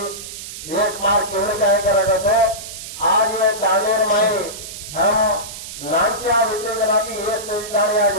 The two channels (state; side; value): noise; right; hiss, 11 dB below the sound